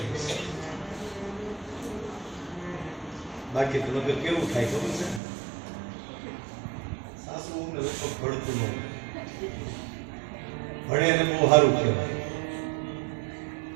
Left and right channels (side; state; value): left; drops out; at 5.2 s